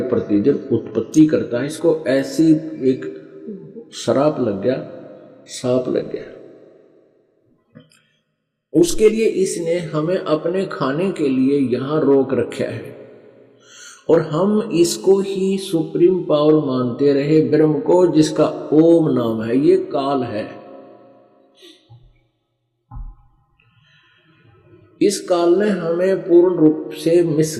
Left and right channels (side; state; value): both; identical; correlation 1.00